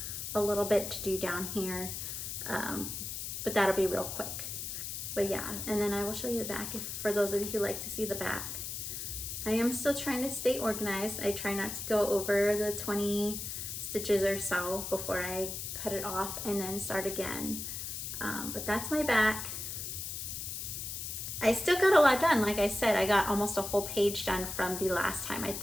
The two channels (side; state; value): left; noise; hiss, 5 dB below the sound